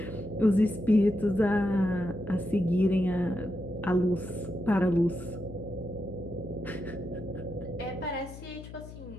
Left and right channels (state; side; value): noise; left; hum, 14 dB below the sound